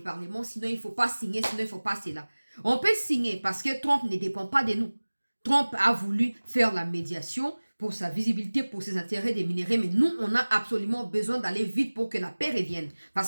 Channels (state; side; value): inverted; both; correlation -1.00